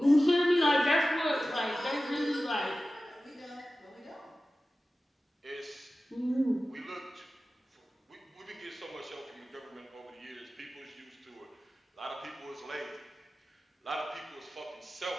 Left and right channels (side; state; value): both; normal; correlation 0.95